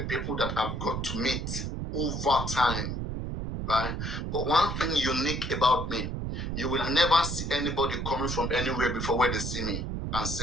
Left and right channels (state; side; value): noise; right; rumble, 3 dB below the sound